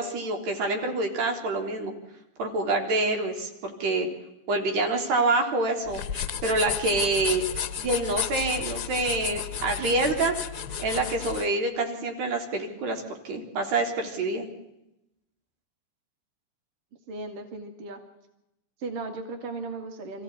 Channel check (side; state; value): left; late; 6.9 ms